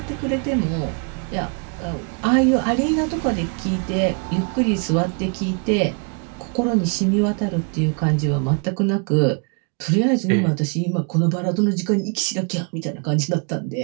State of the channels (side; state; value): left; quieter; 37.4 dB